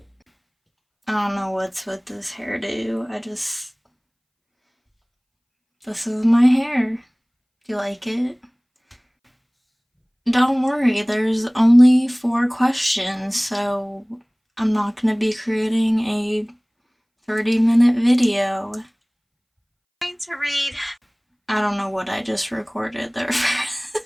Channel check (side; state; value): both; identical; correlation 1.00